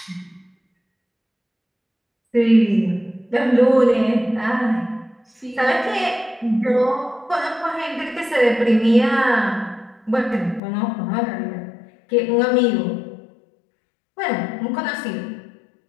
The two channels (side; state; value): right; drops out; at 10.6 s